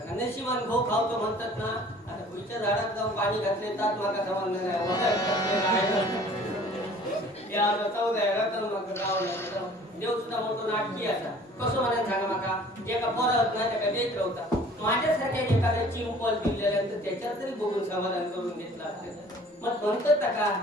नशिबान घो खावतो म्हणतात ना आता पुढच्या झाडात जाऊन पाणी घातले तात माका समजलं नाही देव सुद्धा मोठो नाटकी असा कसं म्हणायला सांगा माका जे का परत नाही त्या देत राहता माझ्यासारख्या एखाद्या चिंपल दिलेल्यानंतर त्याच्यात तरी बघून समाधान करून घेतला मग म्हणतात का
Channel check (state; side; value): normal; both; correlation 0.50